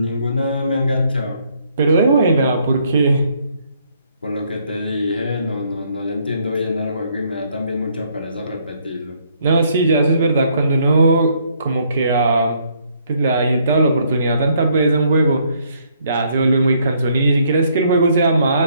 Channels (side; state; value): both; inverted; correlation -0.68